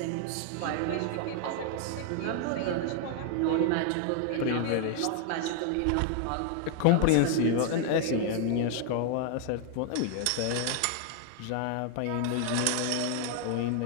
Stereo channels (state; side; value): different; both; correlation 0.00